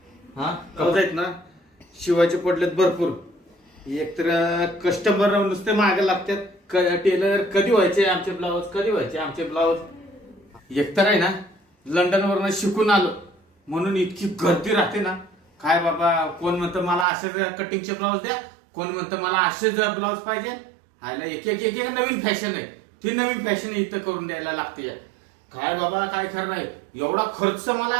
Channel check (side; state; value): left; drops out; at 17.1 s